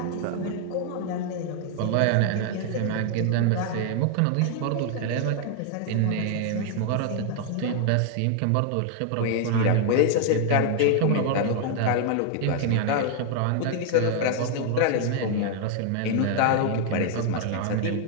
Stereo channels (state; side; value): different; both; correlation 0.00